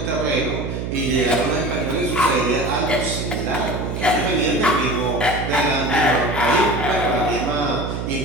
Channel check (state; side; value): noise; right; hum, 4 dB below the sound